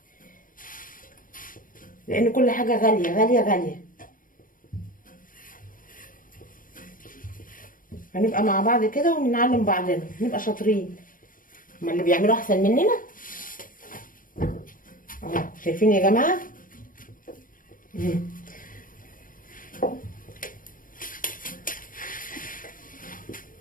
لان كل حاجه غاليه غاليه غاليه. هنبقى مع بعض كده ونعلم بعضنا، نبقى شاطرين. هما اللي بيعملوا احسن مننا اهو، شايفين يا جماعه.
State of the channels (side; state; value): right; late; 0.40 ms